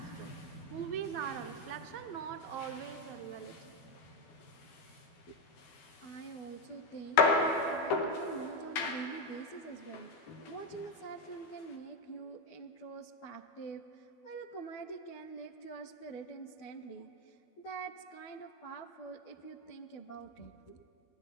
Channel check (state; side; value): late; right; 12 ms